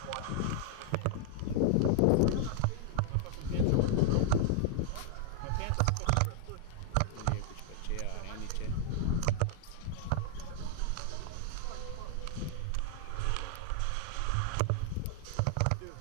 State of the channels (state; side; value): different; both; correlation 0.00